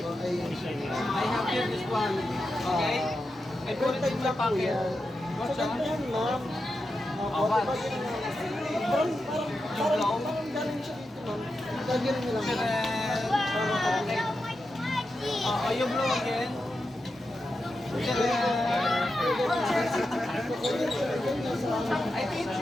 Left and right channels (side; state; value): both; normal; correlation 0.89